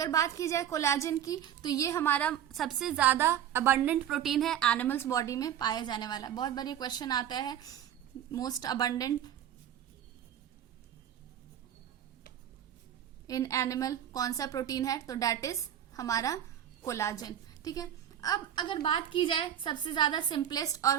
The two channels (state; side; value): quieter; left; 10.2 dB